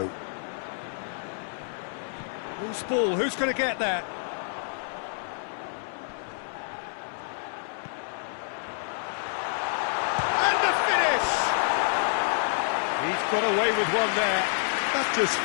Loose ball, who's going to get that? And the finish! He's got away with one there. That's just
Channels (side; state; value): right; silent; 59 dB below the other